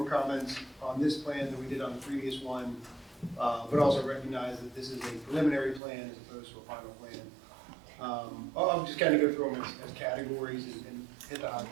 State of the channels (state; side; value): drops out; left; at 5.8 s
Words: comments on this plan than we did on the previous one, but also recognize that this is a preliminary plan as opposed to a final plan. I'll just kind of go through them as categories and hit the high